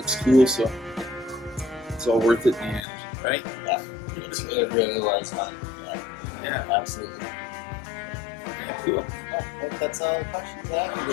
cool, so it's all worth it in the end, right? Yeah, it really was fun. Yeah, absolutely. Yeah, cool. I think that's all the questions I have. It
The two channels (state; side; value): drops out; right; at 2.9 s